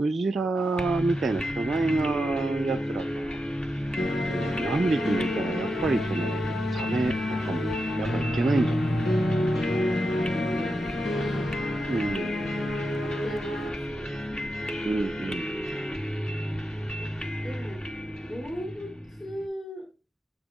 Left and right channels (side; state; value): both; normal; correlation 0.87